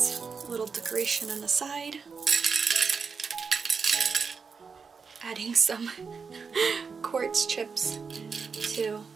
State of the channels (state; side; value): quieter; left; 5.4 dB